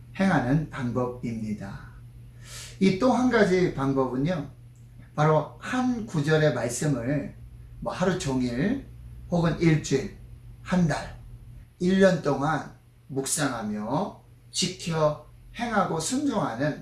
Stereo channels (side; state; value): both; identical; correlation 1.00